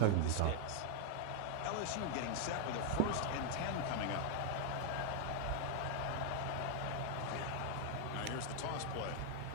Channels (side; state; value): both; different; correlation 0.00